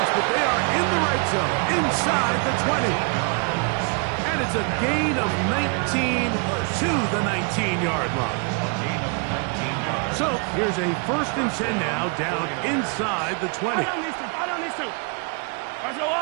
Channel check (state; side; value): quieter; left; 35.1 dB